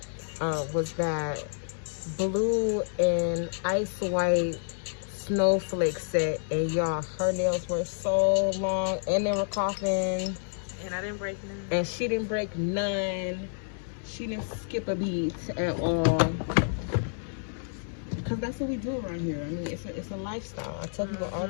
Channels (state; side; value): silent; right; digital silence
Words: Was that blue and ice white snowflake set, and y'all, her nails were so long and they were coughing, and I didn't break none, and she didn't break none. She didn't skip a beat at all, because that's what we do around here. I mean, it's a lifestyle. I tell people all